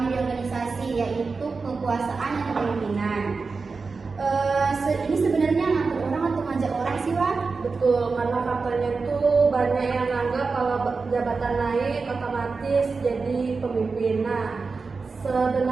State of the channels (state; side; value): quieter; left; 4.4 dB